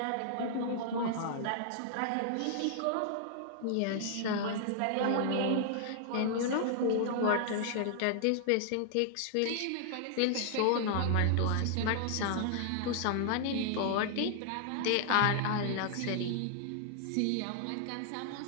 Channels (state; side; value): different; both; correlation -0.01